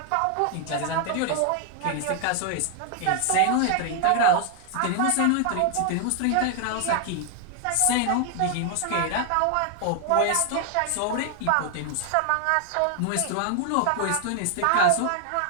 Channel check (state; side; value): different; both; correlation 0.00